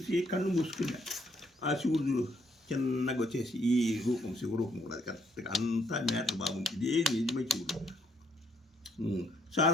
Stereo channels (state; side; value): normal; both; correlation 0.70